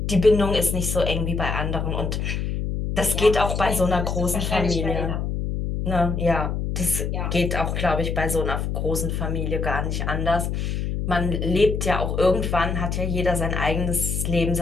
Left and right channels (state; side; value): noise; left; hum, 2 dB below the sound